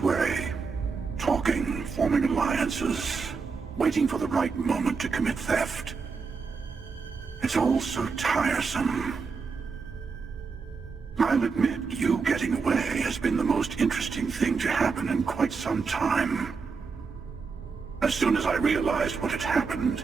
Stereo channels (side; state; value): left; quieter; 5.0 dB